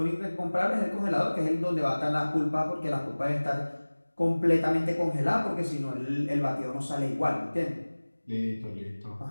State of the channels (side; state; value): both; inverted; correlation -1.00